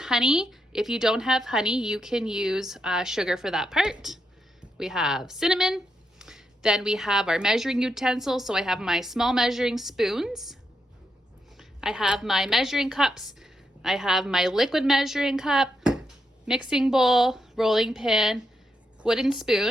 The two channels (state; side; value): normal; both; correlation 0.82